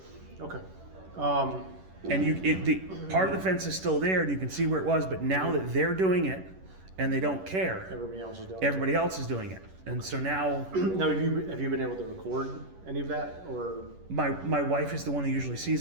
Okay. And the part of the fence is still there, and you can see where it was. But now that they're doing it, and they don't care, Everybody else is doing. everybody else is doing it. And so now, Now, have you been able to record any of that, or my wife is the one who usually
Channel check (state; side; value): late; left; 11 ms